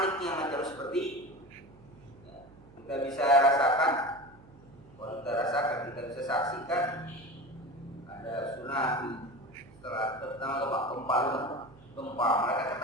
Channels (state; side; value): noise; right; hum, 23 dB below the sound